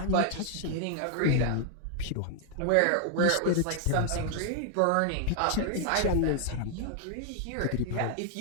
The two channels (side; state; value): both; different; correlation 0.00